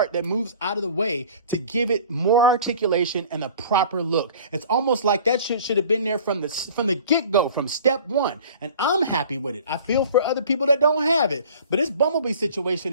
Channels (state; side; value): inverted; both; correlation -0.46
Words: that moves out of the way to give it more articulation and a proper look. It's almost like that shit should have been there from the get-go, from step one. And I'm happy with it. I feel for other people that don't have it. But this Bumblebee